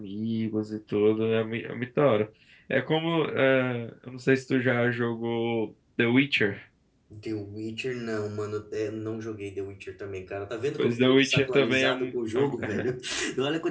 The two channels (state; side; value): identical; both; correlation 1.00